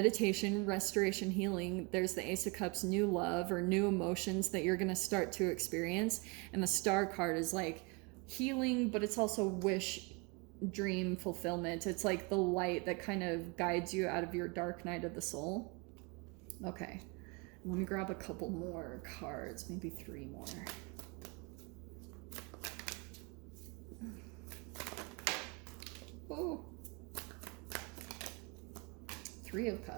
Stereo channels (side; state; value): left; quieter; 29.6 dB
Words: restoration, healing. There's the Ace of Cups, new love or new emotions that you're going to start to experience. And the Star card is like healing, but it's also wish, dream, fulfillment. It's like the light that kind of guides you out of your dark night of the soul. Okay, let me grab a couple more cards, maybe 3 more. Oh, 3 of